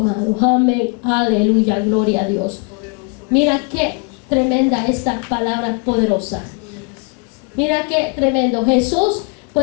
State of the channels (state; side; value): quieter; right; 32.4 dB